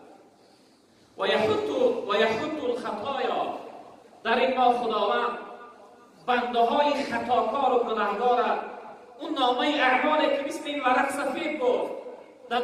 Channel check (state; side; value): identical; both; correlation 1.00